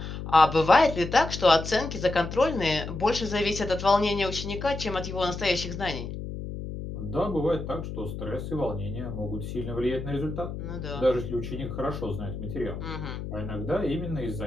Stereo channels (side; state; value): left; noise; hum, 7 dB below the sound